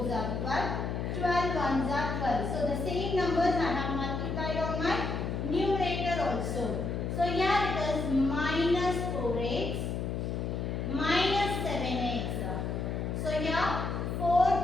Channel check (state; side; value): noise; left; hum, 2 dB below the sound